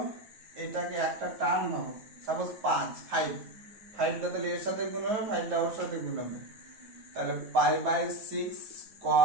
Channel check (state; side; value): late; left; 9.3 ms